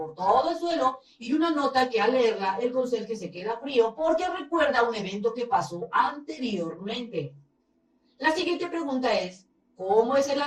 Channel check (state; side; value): identical; both; correlation 1.00